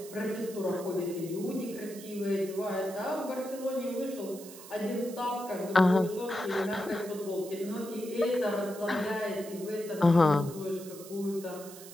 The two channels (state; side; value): noise; right; hiss, 16 dB below the sound